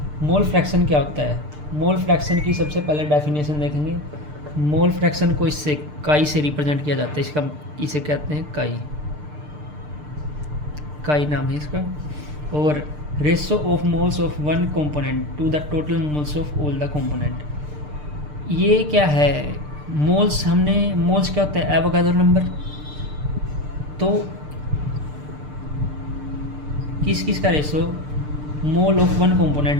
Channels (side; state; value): left; late; 6.7 ms